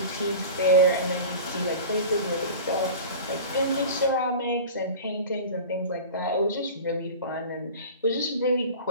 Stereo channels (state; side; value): inverted; both; correlation -0.35